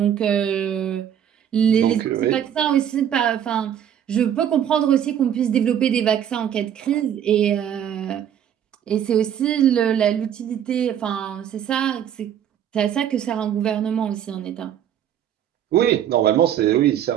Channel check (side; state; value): left; quieter; 9.7 dB